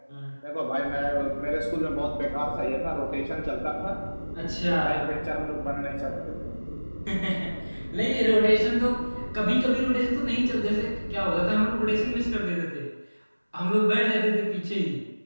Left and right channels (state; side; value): inverted; both; correlation -1.00